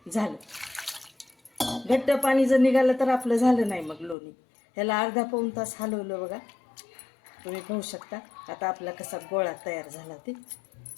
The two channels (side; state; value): right; drops out; at 4.2 s